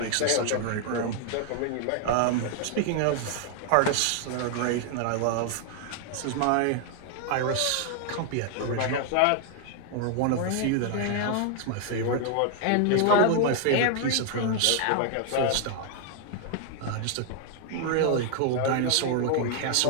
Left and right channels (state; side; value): different; both; correlation 0.00